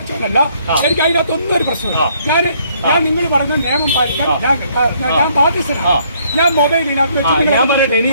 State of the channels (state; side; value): inverted; both; correlation -0.66